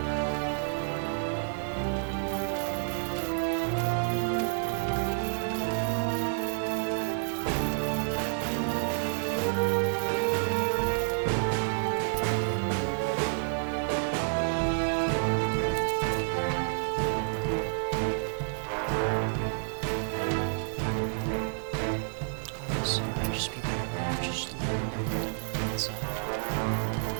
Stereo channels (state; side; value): silent; left; 58 dB below the other